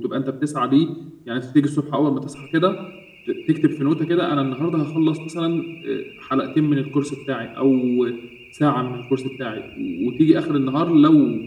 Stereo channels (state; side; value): identical; both; correlation 1.00